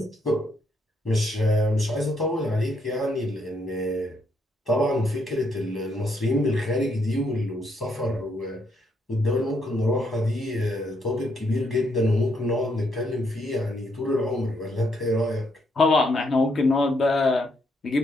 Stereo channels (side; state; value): both; normal; correlation 0.75